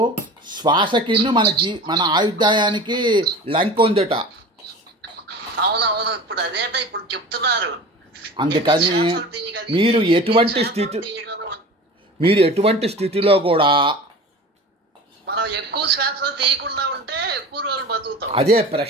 శ్వాసకి మన ఆయుర్దాయానికి లంక ఉందట. అవునవును, ఇప్పుడు అదేట ఇప్పుడు చెప్తున్నారు. అందుకని మీరు ఎటువంటి స్థితిలో కూడా మనం ఎక్కువ శ్వాస తీయకుండా ఉంటే ఎక్కువ రోజులు బతుకుతాం. అదే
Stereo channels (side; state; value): both; normal; correlation 0.37